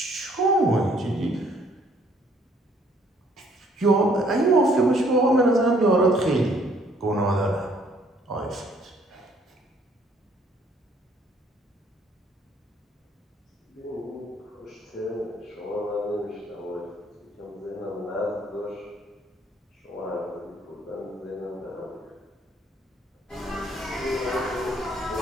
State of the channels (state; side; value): normal; both; correlation 0.63